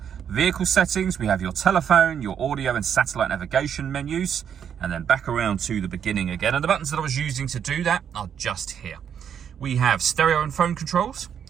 vehicle settings, we have your telephone, your audio and satellite navigation menus, and then back around to the beginning again. And the buttons that I was using to do that are just here. We have stereo and phone controls.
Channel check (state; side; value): quieter; left; 8.4 dB